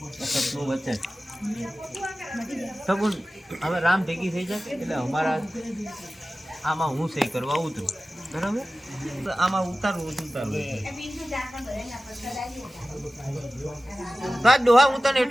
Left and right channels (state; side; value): normal; both; correlation 0.96